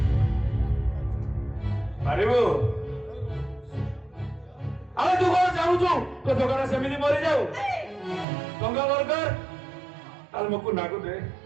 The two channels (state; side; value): drops out; left; at 8.2 s